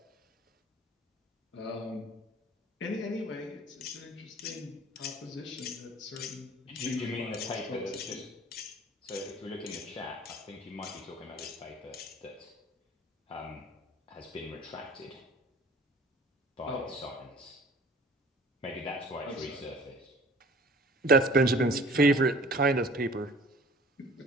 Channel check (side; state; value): both; normal; correlation 0.48